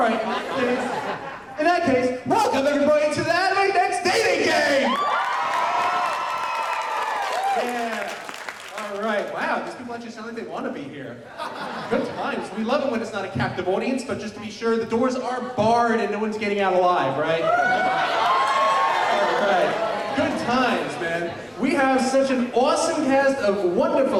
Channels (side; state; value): both; identical; correlation 1.00